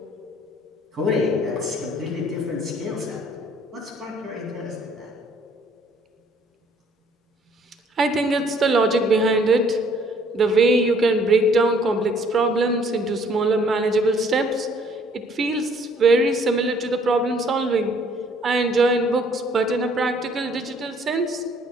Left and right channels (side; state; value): both; normal; correlation 0.61